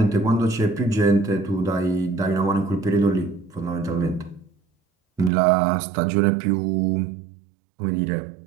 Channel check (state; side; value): drops out; left; at 5.3 s